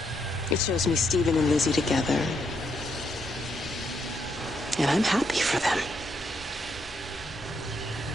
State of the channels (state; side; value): normal; both; correlation 0.77